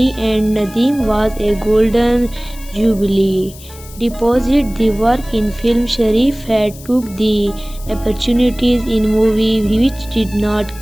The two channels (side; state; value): left; noise; hiss, 19 dB below the sound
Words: and Nadeem, was a golden jubilee. Deposit the work in film. Sharif had took the opportunities in movie which did not